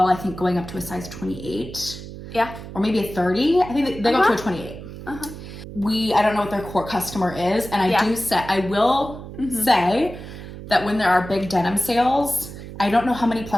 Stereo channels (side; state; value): right; noise; hum, 12 dB below the sound